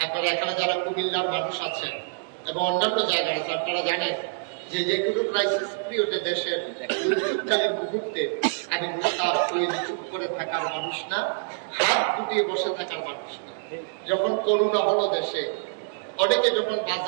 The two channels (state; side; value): silent; left; digital silence